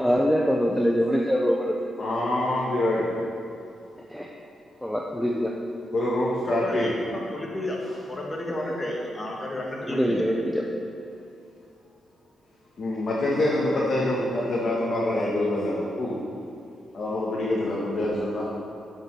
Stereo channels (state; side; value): normal; both; correlation 0.86